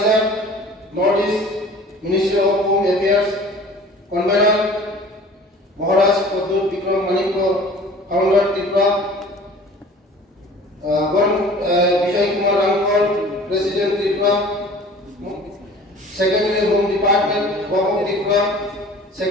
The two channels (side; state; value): both; normal; correlation 0.45